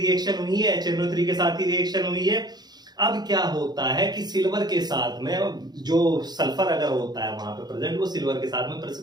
हुई है, HNO3 के साथ ही रिएक्शन हुई है। अब क्या होता है कि सिल्वर के साथ में जो सल्फर अगर होता है वहां पे प्रेजेंट, वो सिल्वर के साथ में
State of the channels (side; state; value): left; late; 0.20 ms